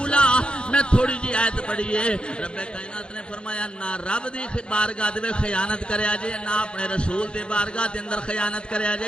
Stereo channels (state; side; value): late; right; 0.054 ms